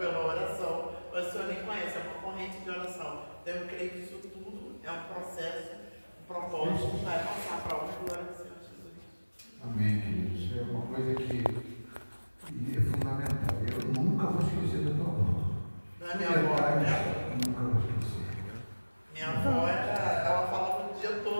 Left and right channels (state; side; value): inverted; both; correlation -1.00